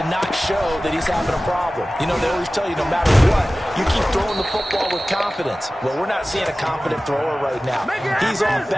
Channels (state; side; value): normal; both; correlation 0.97